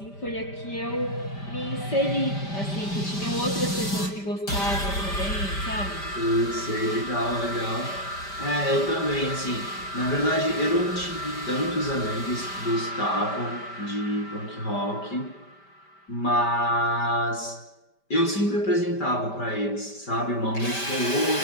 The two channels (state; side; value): late; right; 5.1 ms